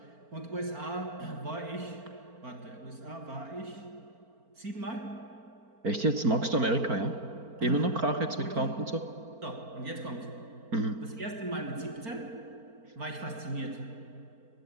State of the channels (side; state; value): left; late; 4.4 ms